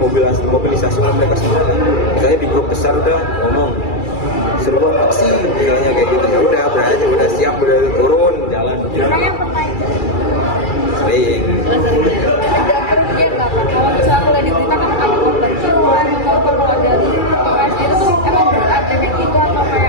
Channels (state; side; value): late; right; 2.3 ms